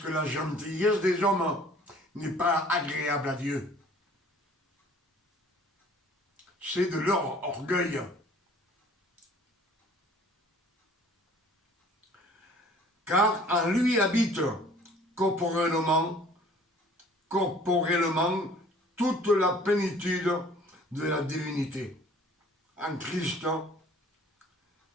la gentillesse des hommes n'est pas agréable à Dieu. C'est de leur orgueil. Car en lui habite corporellement toute la plénitude de la divinité. En Christ,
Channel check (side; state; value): both; normal; correlation 0.52